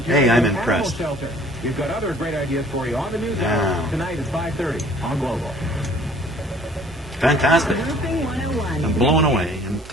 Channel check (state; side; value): noise; right; hum, 24 dB below the sound